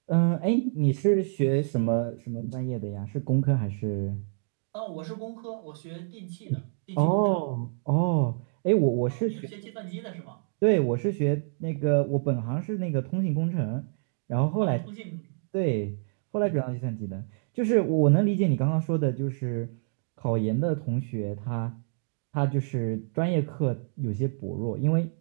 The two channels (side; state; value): left; silent; digital silence